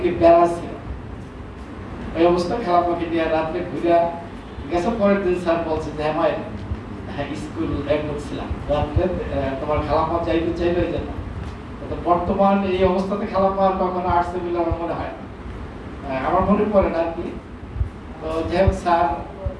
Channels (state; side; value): identical; both; correlation 1.00